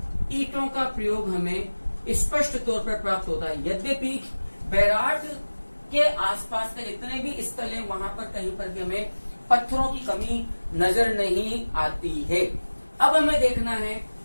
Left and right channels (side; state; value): both; inverted; correlation -1.00